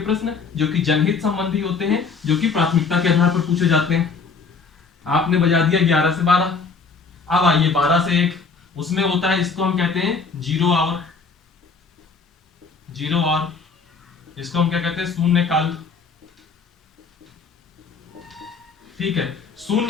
प्रश्न, जो कि जनहित संबंधी होते हैं, जो कि प्राथमिकता के आधार पर पूछे जाते हैं। आपने बजा दिया 11 से 12, अब आइए 12 से 1, उसमें होता है, इसको हम कहते हैं जीरो आवर, इसको हम क्या कहते हैं, शून्यकाल। ठीक है,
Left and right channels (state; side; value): quieter; right; 4.8 dB